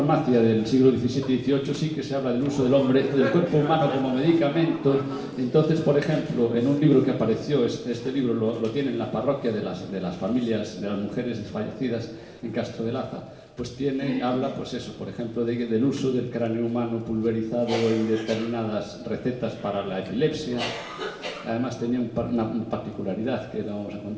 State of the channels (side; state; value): both; identical; correlation 1.00